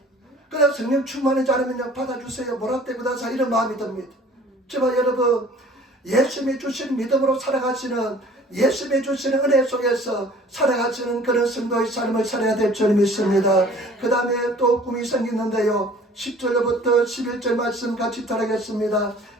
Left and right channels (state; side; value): normal; both; correlation 0.50